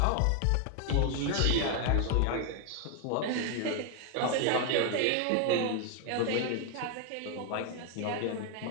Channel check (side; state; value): both; different; correlation 0.01